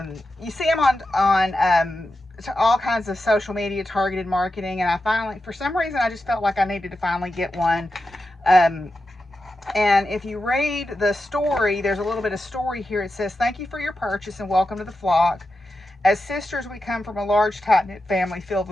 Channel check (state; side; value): normal; both; correlation 0.90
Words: you see them on all kinds of social media, targeted marketing, and I finally, for some reason, I just felt like I needed to finally get one. And if you read the story, there's a little bit of story here. It says, "Thank you for your purchase and welcome to the flock. As sisters, we come from a large, tight-knit family filled